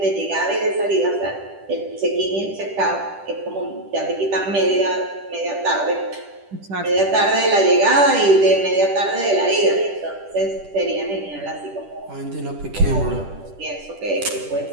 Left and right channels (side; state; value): left; late; 10 ms